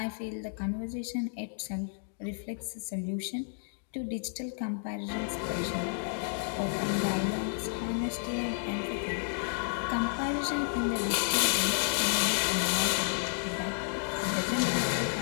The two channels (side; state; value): right; silent; digital silence